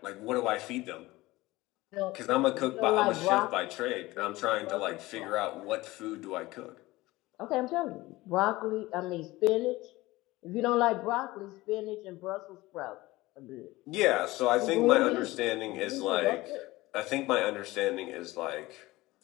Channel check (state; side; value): quieter; right; 19.4 dB